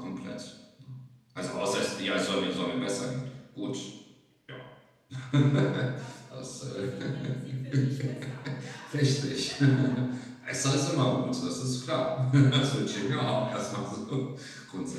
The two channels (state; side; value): identical; both; correlation 1.00